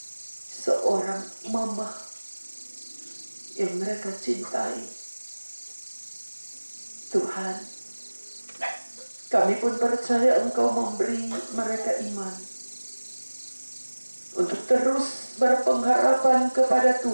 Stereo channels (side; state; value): both; inverted; correlation -1.00